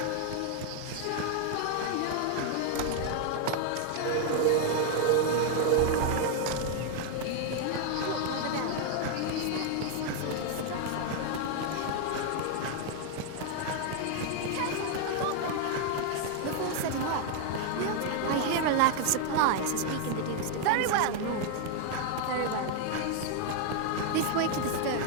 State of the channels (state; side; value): different; both; correlation 0.00